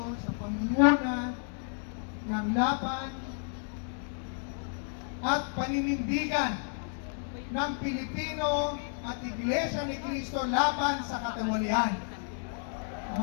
sa pamumuna ng laban at paninindigan ng Pilipino at Iglesia ni Cristo laban sa katiwalian.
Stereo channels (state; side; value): silent; right; 57 dB below the other